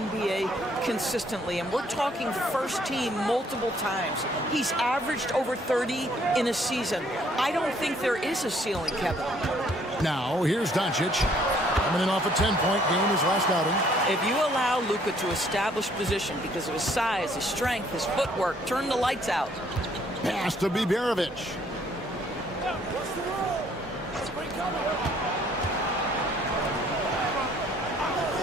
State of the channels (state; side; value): normal; both; correlation 0.63